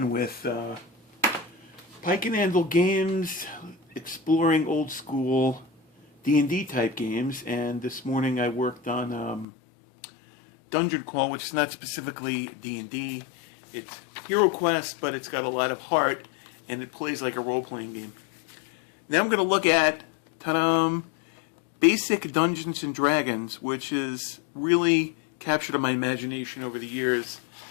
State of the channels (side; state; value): right; drops out; at 9.5 s